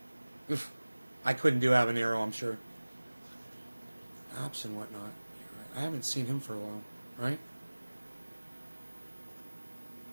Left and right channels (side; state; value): both; inverted; correlation -1.00